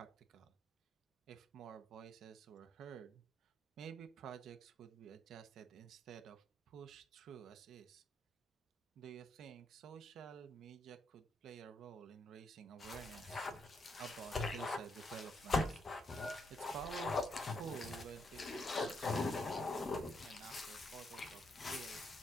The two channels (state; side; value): normal; both; correlation 0.77